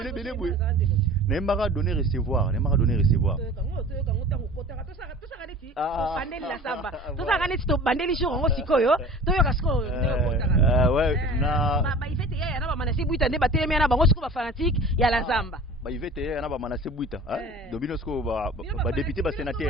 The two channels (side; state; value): both; normal; correlation 0.41